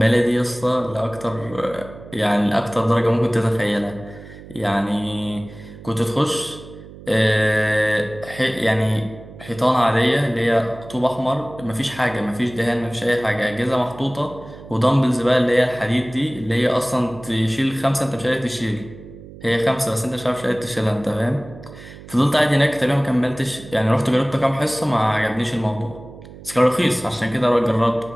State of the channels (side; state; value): right; noise; hum, 17 dB below the sound